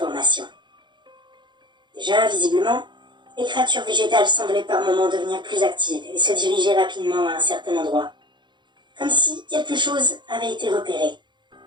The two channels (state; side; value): late; left; 0.22 ms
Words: Déjà, visiblement, les créatures végétales semblaient par moments devenir plus actives et se diriger rapidement à un certain endroit, comme si quelque chose avait été repéré.